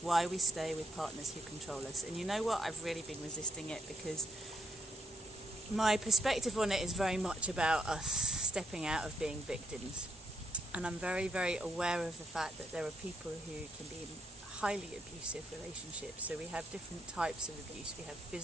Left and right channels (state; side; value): normal; both; correlation 0.77